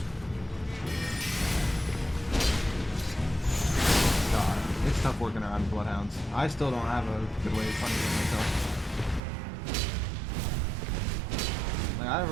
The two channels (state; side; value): drops out; left; at 9.2 s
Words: It's tough working around bloodhounds. I still don't have a good way of punishing myself. Like, I